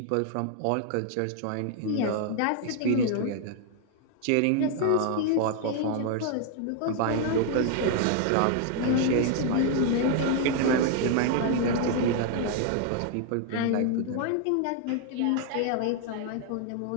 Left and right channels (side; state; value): both; different; correlation 0.00